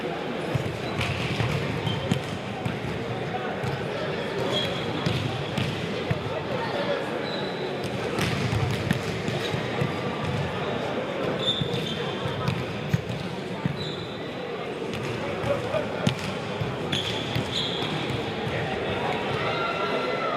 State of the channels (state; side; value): identical; both; correlation 1.00